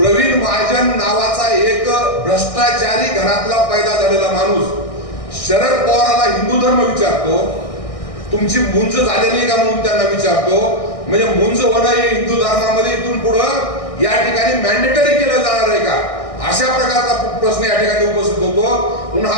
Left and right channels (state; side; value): late; right; 1.6 ms